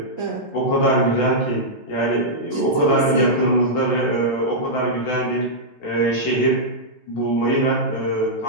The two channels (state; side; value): late; right; 14 ms